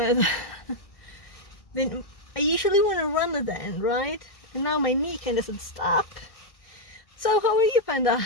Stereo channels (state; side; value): late; right; 1.6 ms